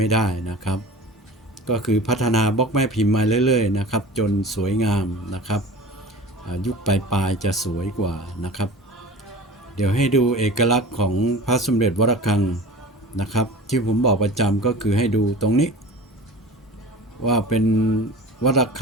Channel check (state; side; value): normal; both; correlation 0.37